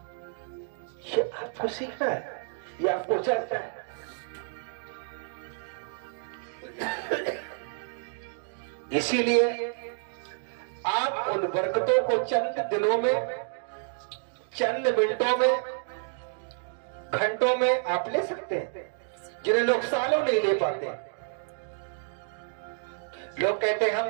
ये आपको सीखना है, ये आपको चलता है। इसीलिए आप उन बरकतों को चंद दिनों में, चंद मिनटों में, घंटों में आप ले सकते हैं, जिन्हें लोग सालों नहीं ले पाते। लोग कहते हैं हम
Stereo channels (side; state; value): left; silent; digital silence